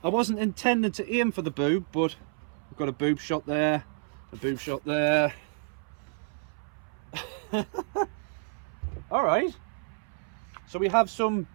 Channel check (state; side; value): silent; left; 58 dB below the other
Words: I wasn't intending to aim for the boob, but we've got a boob shot there, a boob shot there. Alright, so we have some